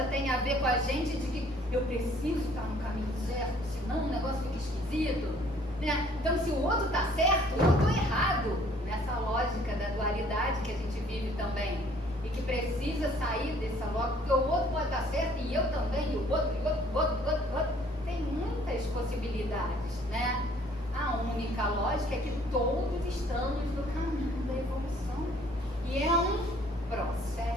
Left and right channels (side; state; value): both; normal; correlation 0.59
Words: tem a ver com a gente de que eu preciso estar no caminho certo, senão o negócio fica esquisito, né? Então se o outro está certo, eu estou errado, nessa lógica da dualidade que a gente vive também, e que precisa sair dessa lógica, porque o outro pode estar certo e eu também, e o outro, tem muitas possibilidades, né? A única lógica é que todos estamos no caminho da evolução. E é um